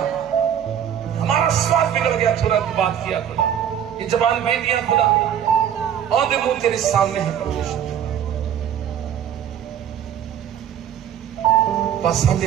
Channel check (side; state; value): left; quieter; 9.5 dB